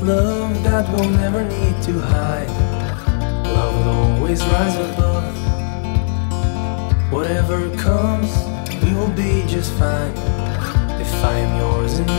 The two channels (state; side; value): silent; right; 68 dB below the other